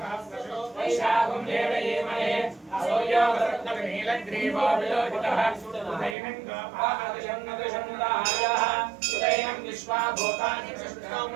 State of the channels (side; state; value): left; drops out; at 6.2 s